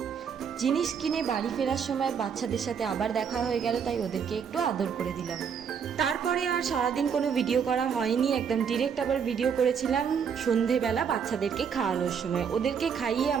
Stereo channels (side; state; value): left; quieter; 7.0 dB